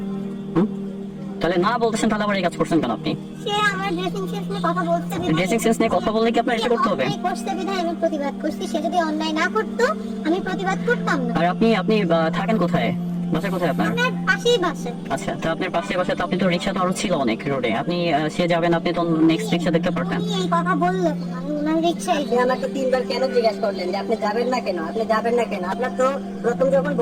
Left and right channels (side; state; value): both; identical; correlation 1.00